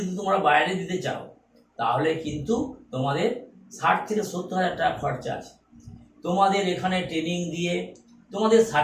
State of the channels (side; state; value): both; identical; correlation 1.00